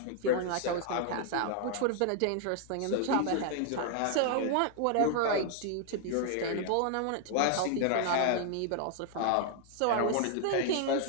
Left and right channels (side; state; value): both; different; correlation 0.00